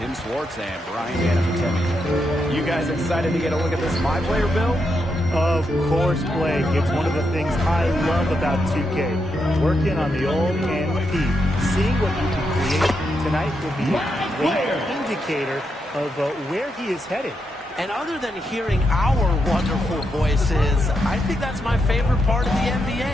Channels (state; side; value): normal; both; correlation 0.83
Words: Tim Swartz and Brian Anafatemi. You guys excited to get a look at this My Player build? Of course, Blake. It's one of the things I love about 2K. Working on the old MP. Seeing what you can create tonight will be a great indicator of where he is headed. And other than hearing our wonderful voices, I think that's my favorite part of the